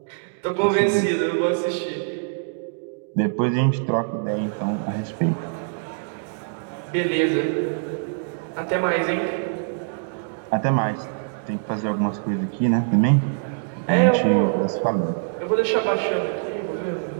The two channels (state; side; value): silent; left; digital silence